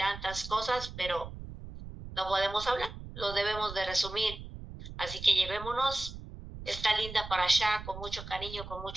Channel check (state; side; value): noise; right; rumble, 11 dB below the sound